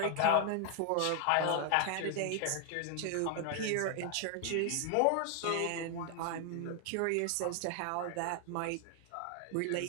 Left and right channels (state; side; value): different; both; correlation 0.00